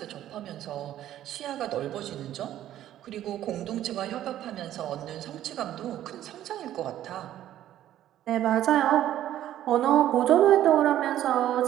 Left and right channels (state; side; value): quieter; left; 12.4 dB